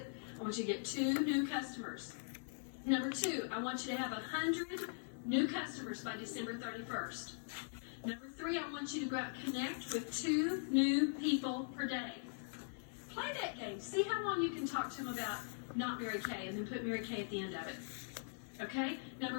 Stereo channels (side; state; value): right; silent; 50 dB below the other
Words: I want you to get 2 new customers. Number 2, I want you to have 100 new customers by December 31st. Number 3, I want you to go out and connect with 2 new people per day. Play that game. See how long you can talk to them about not Mary Kay and then put Mary Kay at the end of it. Okay?